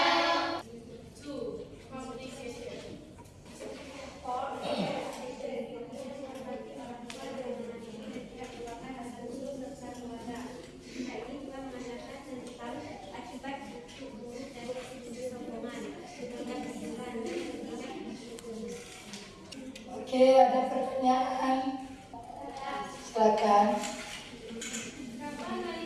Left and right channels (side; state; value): both; identical; correlation 1.00